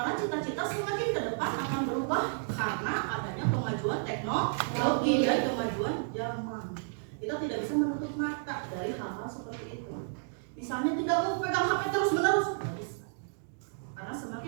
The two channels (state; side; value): silent; left; digital silence